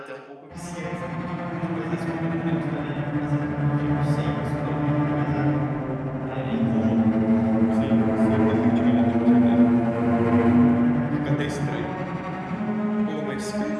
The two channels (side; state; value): both; identical; correlation 1.00